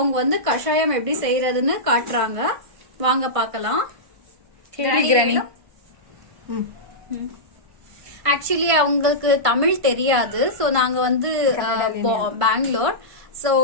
வந்து கஷாயம் எப்படி செய்யறதுன்னு காட்டுறாங்க. வாங்க பாக்கலாம். கிராணி. ஆக்சுவலி அவங்களுக்கு தமிழ் தெரியாது. சோ நாங்க வந்து பெங்களூர். சோ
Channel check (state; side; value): late; left; 1.5 ms